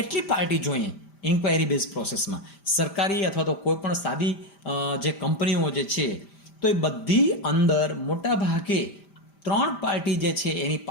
પાર્ટી જોઈએ ઇન્ક્વાયરી બેઝ પ્રોસેસમાં? સરકારી અથવા તો કોઈ પણ સાદી જે કંપનીઓ જે છે તો એ બધી અંદર મોટા ભાગે 3 પાર્ટી જે છે એની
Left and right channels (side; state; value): right; late; 5.0 ms